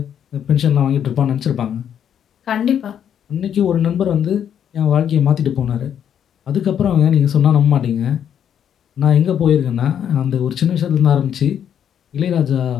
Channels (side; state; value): right; quieter; 9.0 dB